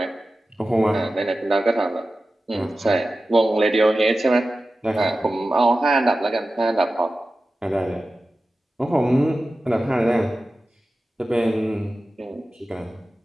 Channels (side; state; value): both; normal; correlation 0.94